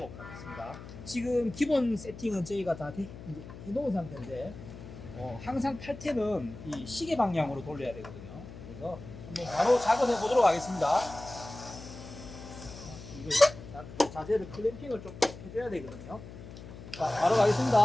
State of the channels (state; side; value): noise; left; hum, 14 dB below the sound